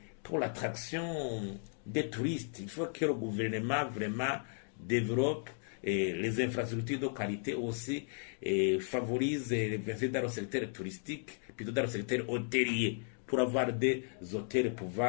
l'attraction des touristes. Il faut que le gouvernement vraiment développe les infrastructures de qualité aussi et favorise l'investissement dans le secteur touristique, plutôt dans le secteur hôtelier, pour avoir des hôtels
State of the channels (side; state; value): right; silent; 54 dB below the other